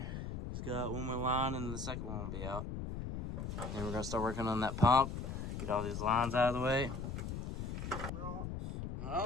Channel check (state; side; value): noise; left; rumble, 5 dB below the sound